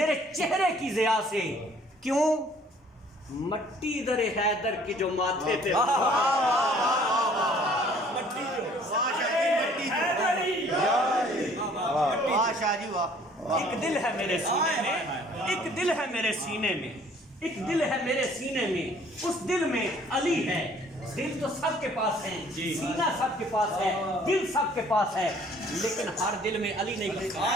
چہرے کی ضیاء سے، کیوں؟ مٹی در حیدر کی جو ماتھے پہ ایک دل ہے میرے سینے میں، ایک دل ہے میرے سینے میں، ایک دل ہے میرے سینے میں، اس دل میں علی ہے۔ دل تو سب کے پاس ہے، سینہ سب کے پاس ہے، دل سب کے پاس ہے، لیکن ہر دل میں علی نہیں لکھا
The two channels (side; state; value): both; normal; correlation 0.56